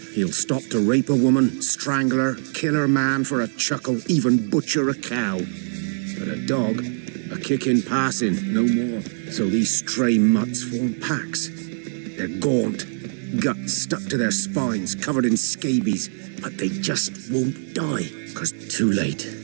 He'll stop to rape a woman, strangle her, kill her man for a chuckle, even butcher a cow. But a dog, a kick in passing, no more. So these stray mutts form packs. They're gaunt, guts stuck to their spines, covered in scabies, but they just won't die, 'cause too late.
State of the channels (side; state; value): left; silent; digital silence